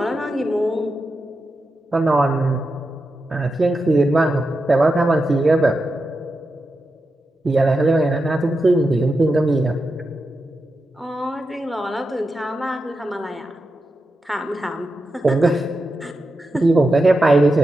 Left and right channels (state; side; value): normal; both; correlation 0.89